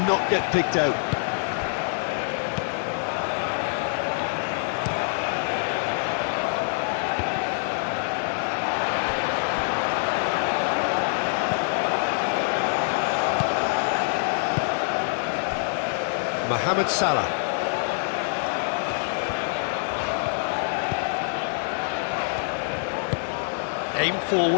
not get picked out. Mohamed Salah. Aim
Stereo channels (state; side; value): silent; right; digital silence